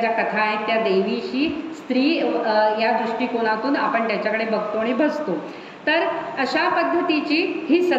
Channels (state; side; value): identical; both; correlation 1.00